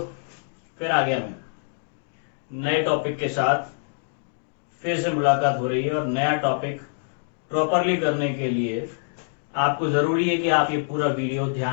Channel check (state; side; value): silent; right; digital silence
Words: फिर आ गया मैं नए टॉपिक के साथ। फिर से मुलाकात हो रही है और नया टॉपिक प्रॉपरली करने के लिए आपको ज़रूरी है कि आप ये पूरा वीडियो